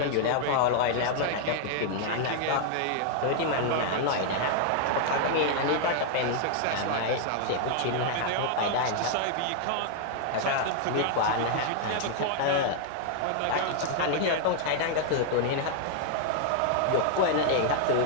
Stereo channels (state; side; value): different; both; correlation 0.00